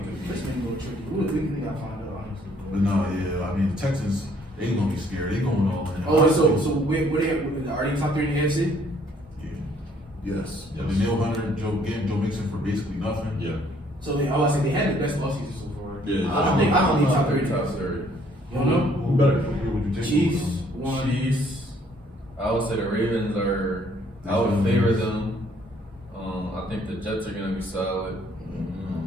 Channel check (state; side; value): normal; both; correlation 0.63